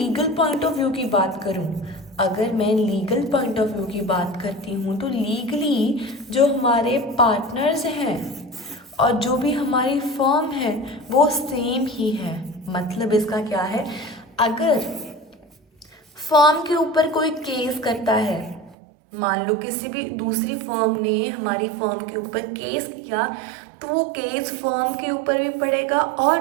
पॉइंट ऑफ व्यू की बात करूं, अगर मैं लीगल पॉइंट ऑफ व्यू की बात करती हूँ तो लीगली जो हमारे पार्टनर्स हैं और जो भी हमारी फर्म है वो सेम ही है. मतलब इसका क्या है, अगर फर्म के ऊपर कोई केस करता है, मान लो किसी भी दूसरी फर्म ने हमारी फर्म के ऊपर केस किया, तो वो केस फर्म के ऊपर भी पड़ेगा और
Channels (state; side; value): drops out; left; at 18.8 s